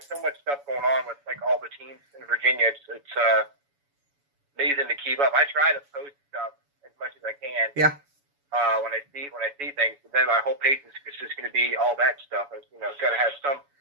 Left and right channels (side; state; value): left; late; 7.1 ms